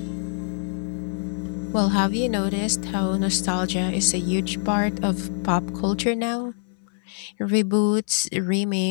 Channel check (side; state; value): right; silent; 62 dB below the other